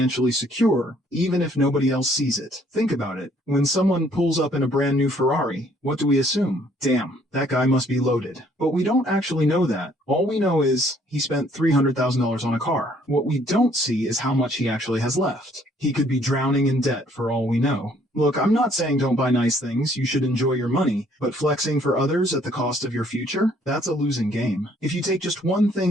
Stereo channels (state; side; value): normal; both; correlation 0.63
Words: secure, even if nobody else sees it. Think about it. When someone pulls up in a brand new Ferrari, what do we assume? Damn, that guy must be loaded. But we don't actually know that. All we know is he spent $300,000 on a car. What we don't see is how much he actually has left. He could be drowning in debt for all we know. Look, I'm not saying don't buy nice things, you should enjoy your money, but flexing for others at the cost of your future? That's a losing game. If you take just one